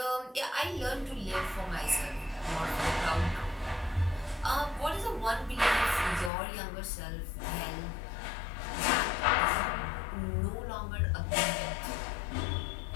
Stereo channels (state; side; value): drops out; right; at 6.3 s